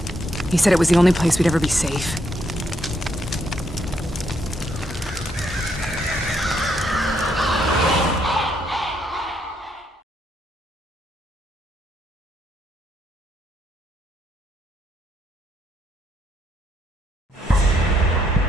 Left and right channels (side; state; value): both; normal; correlation 0.75